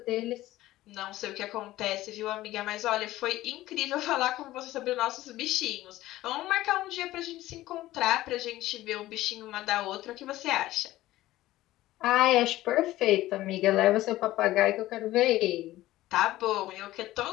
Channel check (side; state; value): right; quieter; 16.0 dB